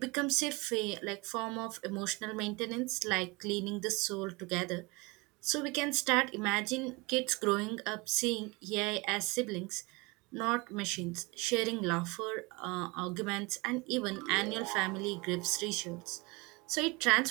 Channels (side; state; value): left; quieter; 26.0 dB